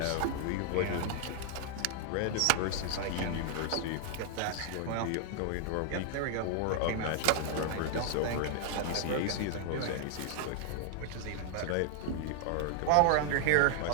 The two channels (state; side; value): different; both; correlation 0.00